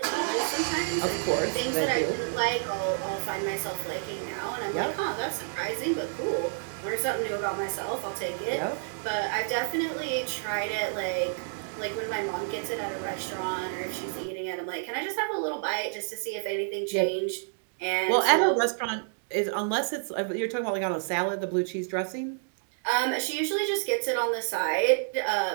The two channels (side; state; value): left; silent; digital silence